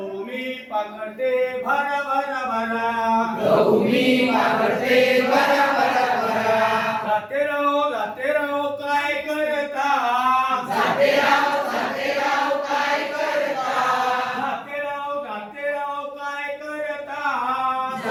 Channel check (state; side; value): identical; both; correlation 1.00